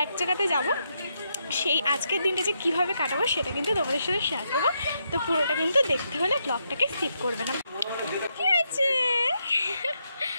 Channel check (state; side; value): inverted; both; correlation -0.80